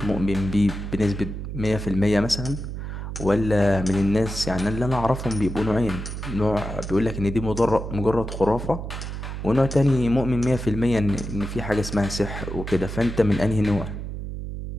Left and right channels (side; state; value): right; noise; hum, 7 dB below the sound